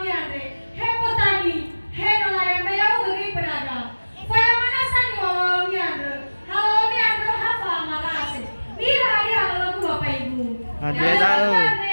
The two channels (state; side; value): inverted; both; correlation -1.00